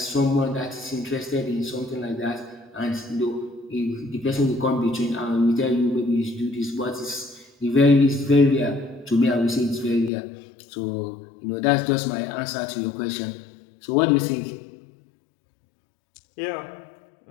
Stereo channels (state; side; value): drops out; right; at 10.1 s